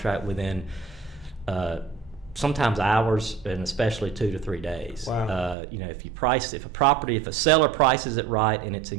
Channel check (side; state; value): left; drops out; at 5.6 s